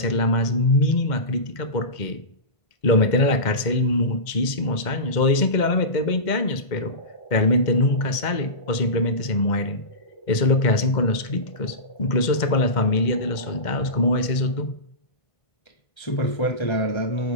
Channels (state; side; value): late; right; 2.1 ms